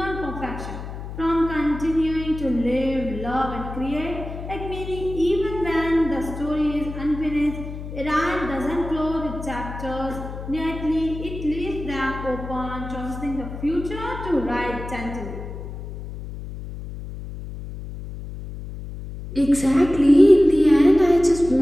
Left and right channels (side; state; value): left; noise; hum, 9 dB below the sound